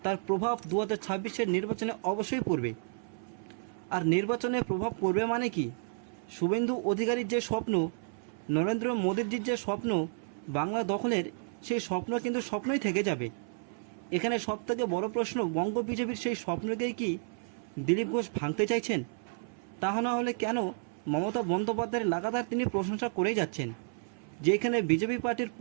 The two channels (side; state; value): left; silent; 57 dB below the other